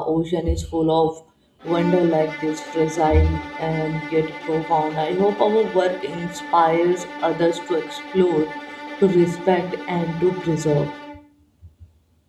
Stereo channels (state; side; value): identical; both; correlation 1.00